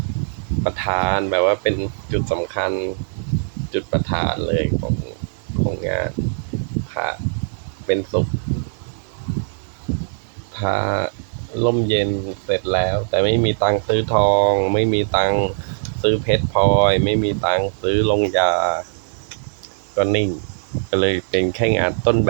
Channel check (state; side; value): silent; left; 60 dB below the other